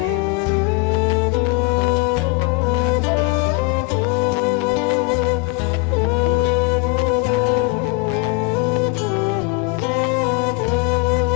Sebagian ulama berpendapat karena setelah dimakamkan tanah itu gembur, maka disiram biar supaya padat. Itulah asal muasal tradisi menyiramkan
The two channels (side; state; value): right; quieter; 24.3 dB